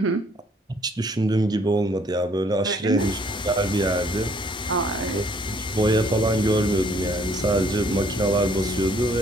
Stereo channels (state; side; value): normal; both; correlation 0.63